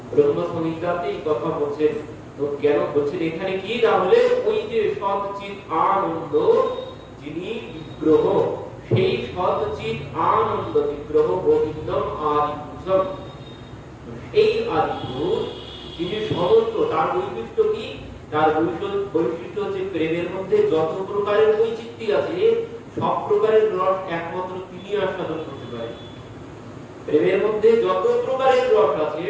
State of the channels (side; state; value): both; identical; correlation 1.00